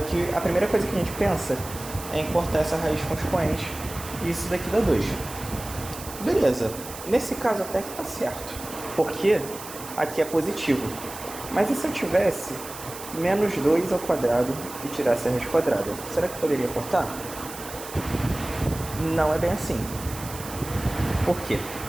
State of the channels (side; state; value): right; noise; hiss, 13 dB below the sound